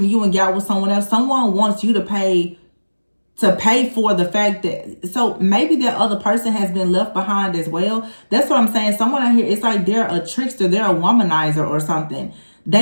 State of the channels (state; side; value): inverted; both; correlation -1.00